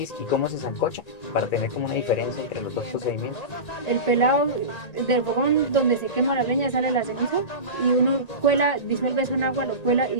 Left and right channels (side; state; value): right; late; 1.8 ms